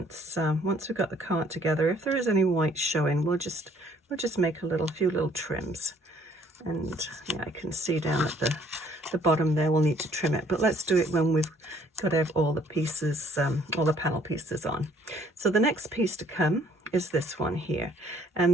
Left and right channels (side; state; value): both; normal; correlation 0.61